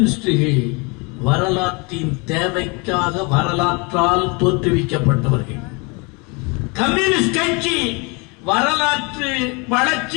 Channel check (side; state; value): right; quieter; 30.1 dB